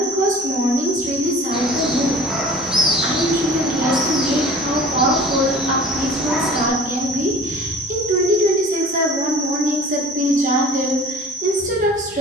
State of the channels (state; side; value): normal; both; correlation 0.44